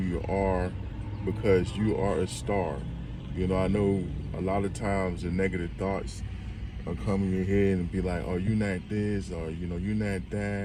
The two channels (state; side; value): identical; both; correlation 1.00